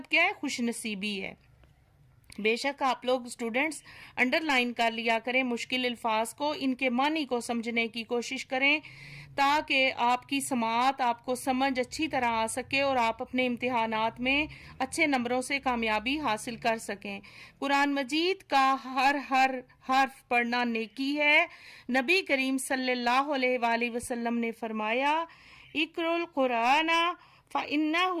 کیا ہے؟ خوش نصیبی ہے۔ بے شک آپ لوگ اسٹوڈنٹس انڈر لائن کر لیا کریں مشکل الفاظ کو، ان کے معنی کو سمجھنے کی کوشش کریں تاکہ آپ کی سماعت، آپ کو سمجھ اچھی طرح آ سکے اور آپ اپنے امتحانات میں اچھے نمبروں سے کامیابی حاصل کر سکیں۔ قرآن مجید کا ہر حرف پڑھنا نیکی ہے۔ نبی کریم صلی اللہ علیہ وآلہ وسلم نے فرمایا، اقرؤ القرآن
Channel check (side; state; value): both; identical; correlation 1.00